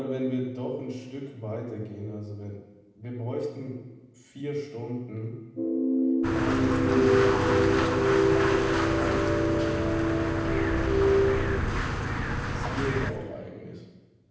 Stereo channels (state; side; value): identical; both; correlation 1.00